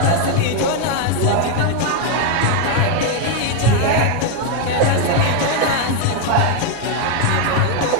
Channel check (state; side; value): different; both; correlation 0.01